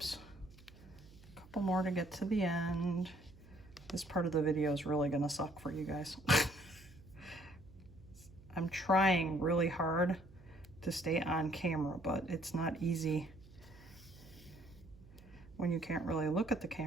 to get to the end. This part of the video is really gonna suck for you guys. I'm trying really hard to stay on camera, but it's not easy when you can't really look at the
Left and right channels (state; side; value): noise; right; hum, 22 dB below the sound